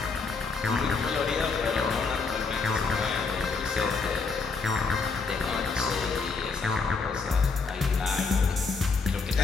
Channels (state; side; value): quieter; right; 4.5 dB